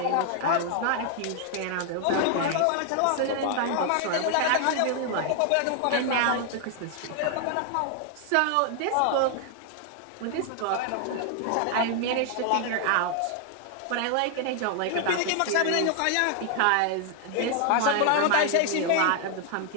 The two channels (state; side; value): different; both; correlation 0.00